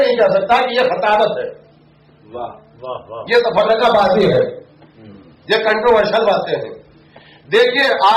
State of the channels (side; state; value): both; identical; correlation 1.00